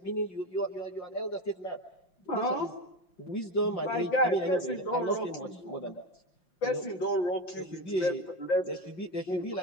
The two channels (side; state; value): right; late; 5.8 ms